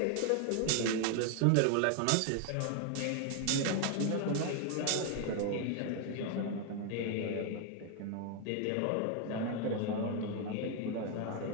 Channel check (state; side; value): different; both; correlation 0.00